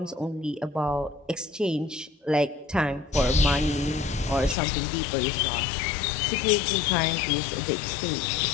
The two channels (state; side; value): drops out; right; at 4.5 s